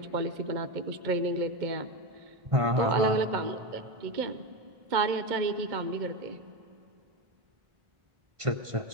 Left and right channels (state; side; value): late; left; 1.5 ms